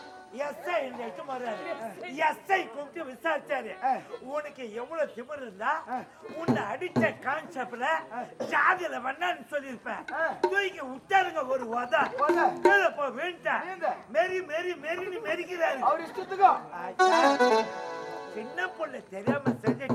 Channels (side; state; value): both; identical; correlation 1.00